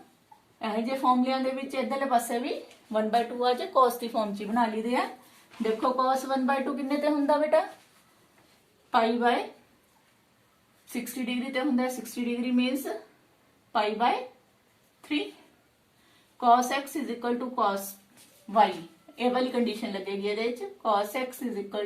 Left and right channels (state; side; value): identical; both; correlation 1.00